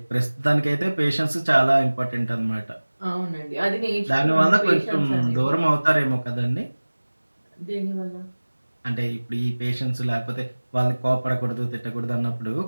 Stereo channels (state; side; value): inverted; both; correlation -1.00